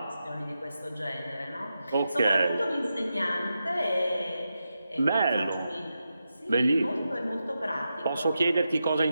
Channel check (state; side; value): inverted; both; correlation -0.88